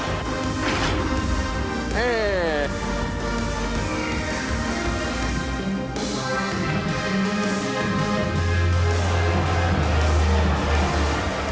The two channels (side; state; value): both; identical; correlation 1.00